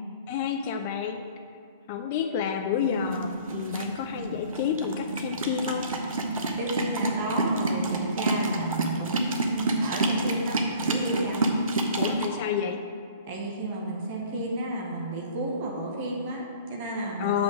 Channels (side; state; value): both; inverted; correlation -0.48